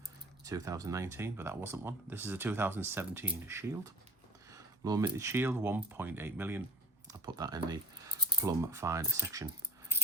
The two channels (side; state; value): both; normal; correlation 0.41